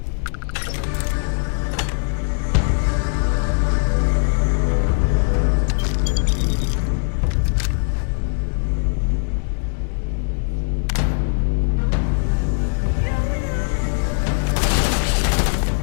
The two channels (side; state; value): right; silent; digital silence